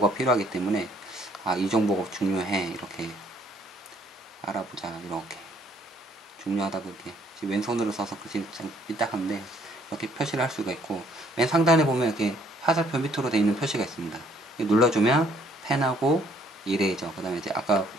필요하기 때문에 이 정보가 중요해, 이렇게 알아보자, 이렇게 중요하다, 그렇게 지금 왼손으로 써서 글씨 참 삐딱한데 이렇게 표시를 할 수가 있고, 맨 상단에 보면 이렇게 화살표 밑으로 되어 있는 표시가 있습니다. 눌러주면 펜하고 이레이저, 그 다음에 이제 아까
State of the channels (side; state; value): both; normal; correlation 0.64